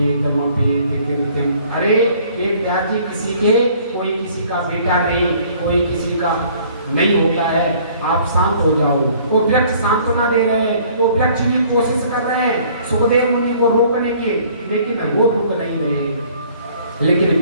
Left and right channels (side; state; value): both; inverted; correlation -0.57